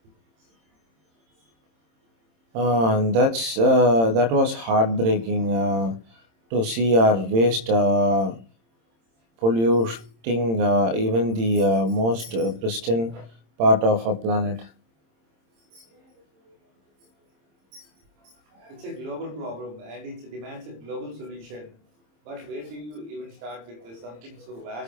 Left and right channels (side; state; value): left; late; 26 ms